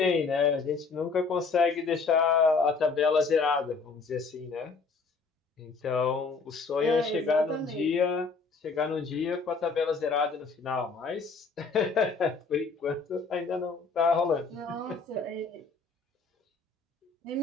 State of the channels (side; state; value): right; quieter; 4.5 dB